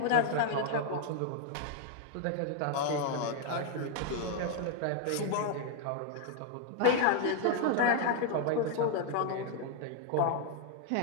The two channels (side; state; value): both; different; correlation 0.00